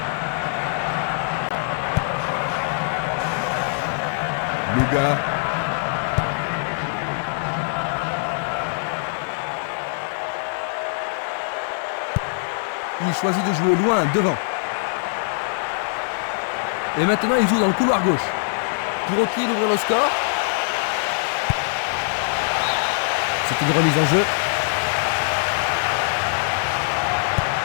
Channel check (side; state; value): right; silent; digital silence